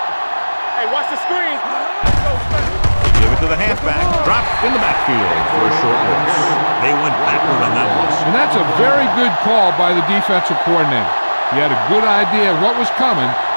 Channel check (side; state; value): both; inverted; correlation -1.00